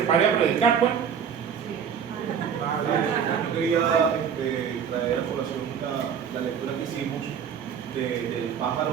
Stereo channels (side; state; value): left; quieter; 7.6 dB